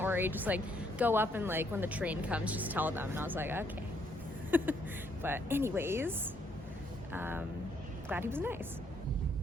worry, just like go up, and like when the train comes, just tell them. And I was like, okay. But anyways, glad he was nice.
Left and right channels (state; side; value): normal; both; correlation 0.70